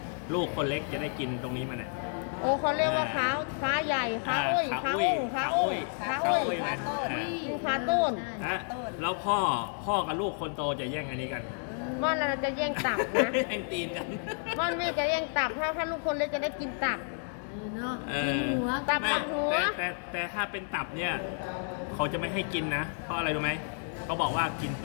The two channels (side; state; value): right; silent; 57 dB below the other